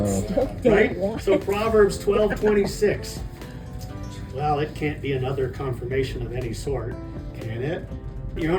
Still day Right? one. So Proverbs 12:26. Well, it can't be another confirmation of any sort, can it? You're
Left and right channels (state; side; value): identical; both; correlation 1.00